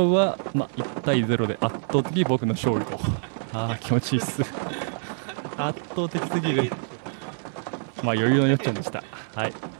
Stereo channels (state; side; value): silent; left; 61 dB below the other